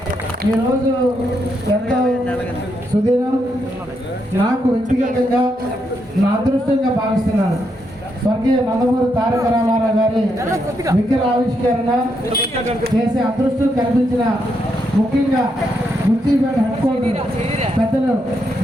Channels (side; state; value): both; normal; correlation 0.79